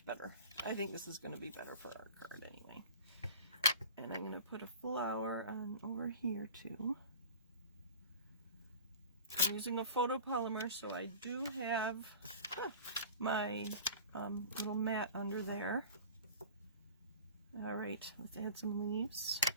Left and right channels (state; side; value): inverted; both; correlation -0.40